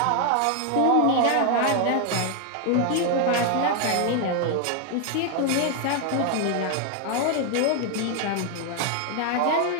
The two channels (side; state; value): both; different; correlation 0.00